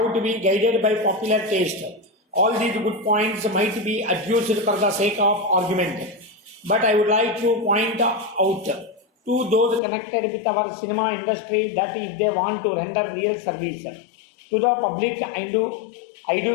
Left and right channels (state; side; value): drops out; right; at 9.8 s